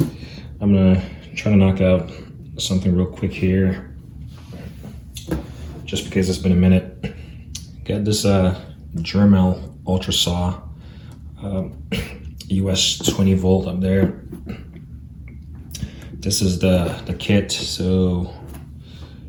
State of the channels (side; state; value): both; identical; correlation 1.00